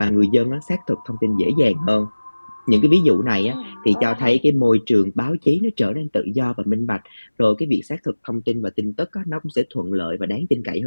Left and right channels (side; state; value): both; inverted; correlation -1.00